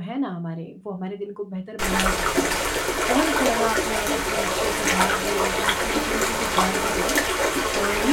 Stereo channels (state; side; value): identical; both; correlation 1.00